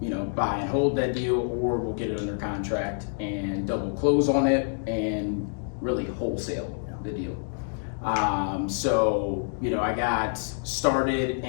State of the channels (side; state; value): right; silent; digital silence